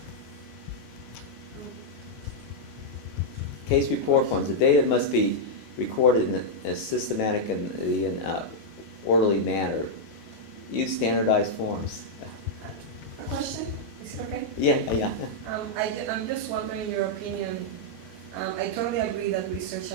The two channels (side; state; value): both; normal; correlation -0.05